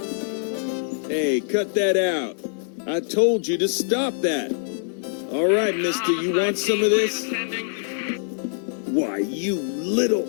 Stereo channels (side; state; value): right; silent; digital silence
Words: Hey, cut that out. I told you to stop that. All right, mister, you want some of this? Why, you little...